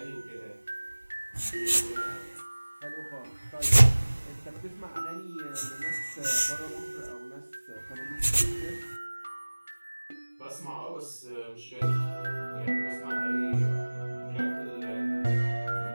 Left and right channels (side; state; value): both; inverted; correlation -1.00